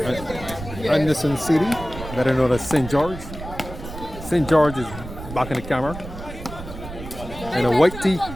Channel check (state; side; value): noise; right; rumble, 11 dB below the sound